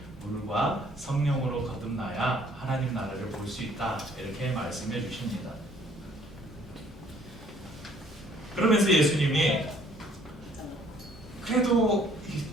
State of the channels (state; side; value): normal; both; correlation 0.60